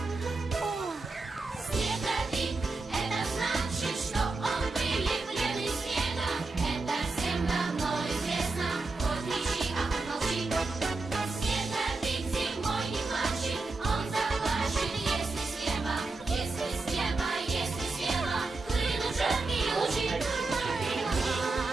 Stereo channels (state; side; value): quieter; left; 3.6 dB